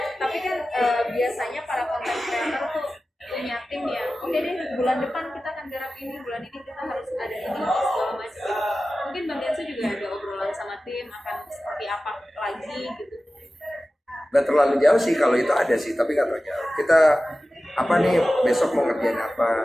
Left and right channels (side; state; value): both; normal; correlation 0.95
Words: tapi kan biasanya para konten kreator tuh punya tim ya. Oke deh, bulan depan kita akan garap ini, bulan ini kita harus ada ini, segala macam. Mungkin Bang Densu juga ada obrolan sama tim akan seperti apa lagi gitu. Gak terlalu jauh sih kalau itu ada sih, tapi gak terlalu jauh. Kita apa nih besok mau ngerjain